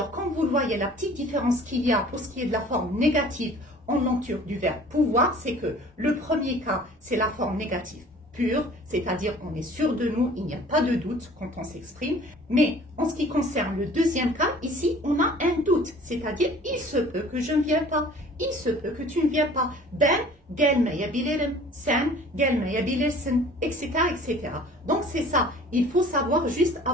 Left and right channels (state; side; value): normal; both; correlation 0.49